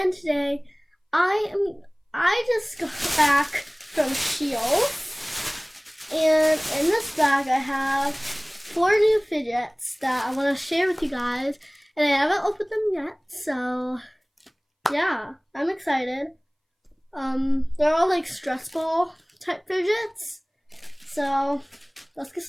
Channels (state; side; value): identical; both; correlation 1.00